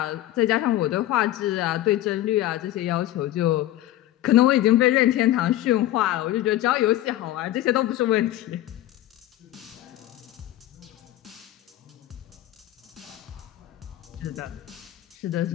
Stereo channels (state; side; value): quieter; right; 14.5 dB